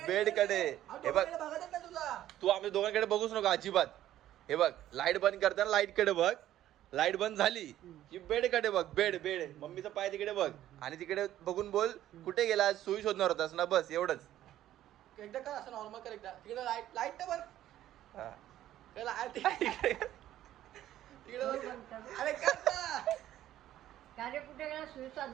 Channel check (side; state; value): left; quieter; 12.8 dB